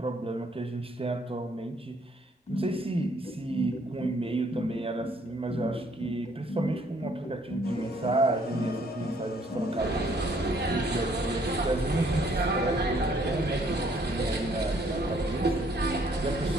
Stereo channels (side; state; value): both; normal; correlation 0.65